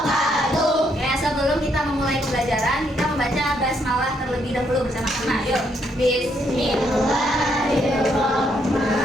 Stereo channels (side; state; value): both; normal; correlation 0.74